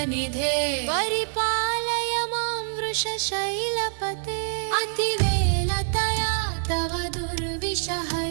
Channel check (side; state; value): left; silent; digital silence